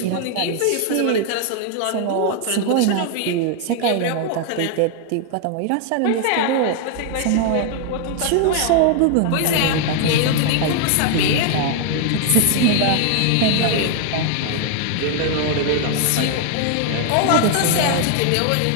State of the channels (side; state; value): both; different; correlation 0.00